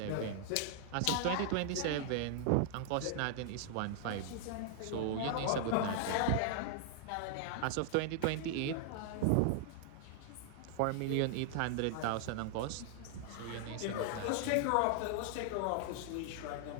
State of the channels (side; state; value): both; different; correlation -0.01